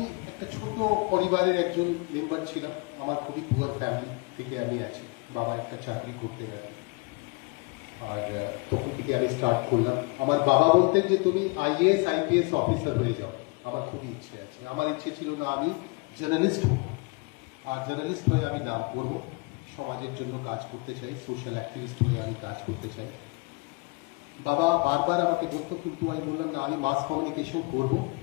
একটা ছোট পরিবারের একজন মেম্বার ছিলাম, আমার খুবই পুয়ার ফ্যামিলি থেকে আমি আছি। বাবা একটা চাকরি করতে রাখি, আর তখন থেকে আমি স্টার্ট করলাম। আমার বাবা বলতেন যে তুমি আইএএস আইপিএস অফিসার হয়ে যাও। আমার খুবই ইচ্ছে আছে, আমার ইচ্ছে ছিল না আমি জার্নালিস্ট হব, আর জার্নালিস্ট হয়ে আমি নাম করবো, সমাজের জন্য কাজ করতে চাই, সোশ্যাল অ্যাক্টিভিস্ট হয়ে আমি কাজ করতে চাই। বাবা বারবার আমাকে বলতো, কিন্তু আমি বললাম না, আমি মাস কমিউনিকেশন করবো,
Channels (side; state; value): right; quieter; 28.9 dB